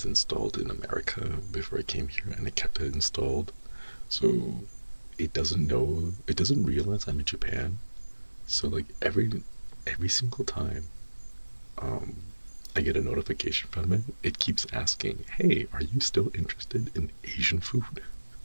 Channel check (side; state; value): both; inverted; correlation -1.00